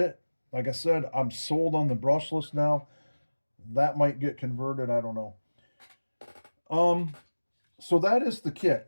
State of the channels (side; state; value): both; inverted; correlation -1.00